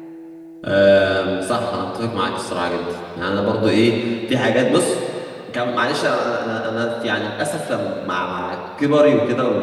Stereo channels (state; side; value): identical; both; correlation 1.00